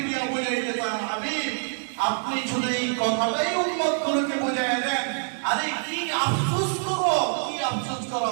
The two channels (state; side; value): silent; left; digital silence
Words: দিয়ে বুঝাইতে চান, হাবিব আপনি শুধু এই কথাটাই উম্মতগুলোকে বুঝাইয়া দেন। আরে কি আফসোস করো, কি আফসোস